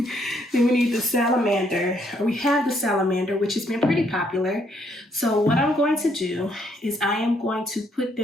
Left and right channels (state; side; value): normal; both; correlation 0.71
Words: Then we need the Salamander. We have the Salamander, which has been pretty popular. So what I'm going to do is I am going to put